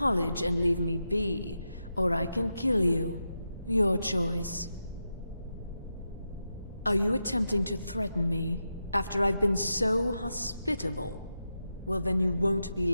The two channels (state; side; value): inverted; both; correlation -0.88